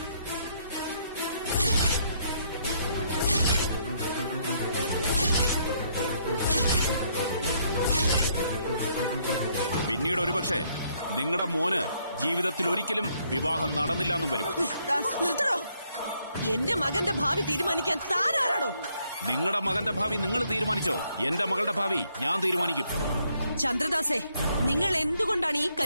പിന്നീട് ഒരുപക്ഷെ നിങ്ങളുടെ മോന് ജീവിതത്തിൽ ഒരിക്കലും വിവാഹം നടന്നില്ല എന്നും വരും. നിർത്തണോ? എന്റെ മകന്റെ ഭാവി തീരുമാനിക്കാൻ താനാരാണോ? നിങ്ങളുടെ മകന്റെ ഭാവി നിങ്ങൾ തീരുമാനിച്ചോ? എന്റെ മകളുടെ ഭാവി ഞാൻ തീരുമാനിക്കും. ചന്ദ്രദാസേ, നിങ്ങൾ എന്തുകൊണ്ടാണ് ഈ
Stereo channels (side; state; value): both; inverted; correlation -0.71